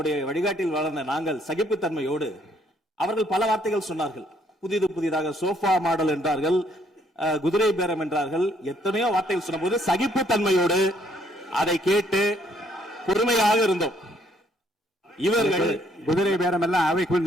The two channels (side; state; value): both; normal; correlation 0.68